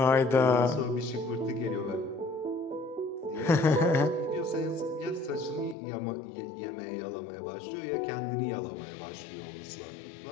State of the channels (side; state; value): right; drops out; at 5.8 s